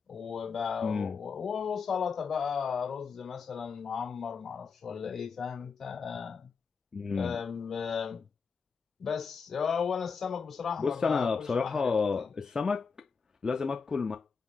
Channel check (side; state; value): right; quieter; 5.4 dB